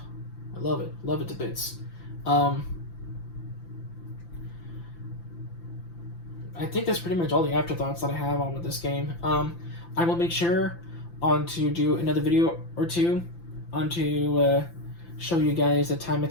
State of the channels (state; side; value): late; right; 5.9 ms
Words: I love it. Love it to bits. I think that's pretty much all the afterthoughts that I have on with this game. I will make sure to do another video or two to show you guys the time